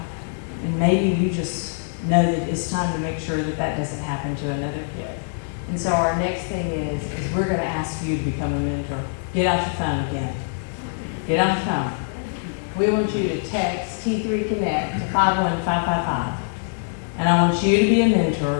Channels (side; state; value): right; silent; digital silence